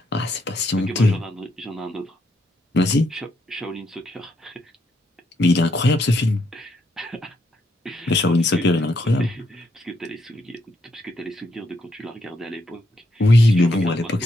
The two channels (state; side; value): normal; both; correlation 0.77